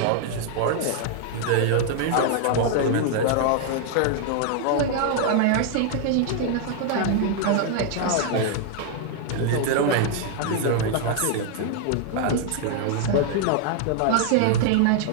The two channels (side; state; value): both; different; correlation 0.00